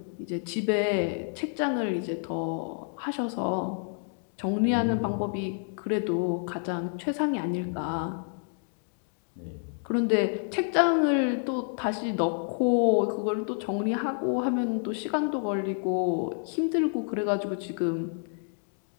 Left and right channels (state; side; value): silent; right; 59 dB below the other